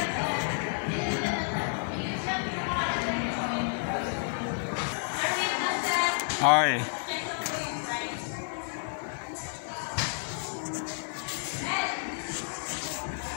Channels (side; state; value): right; silent; digital silence